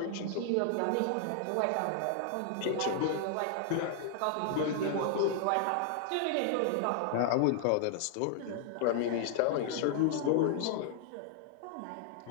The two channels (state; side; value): different; both; correlation 0.00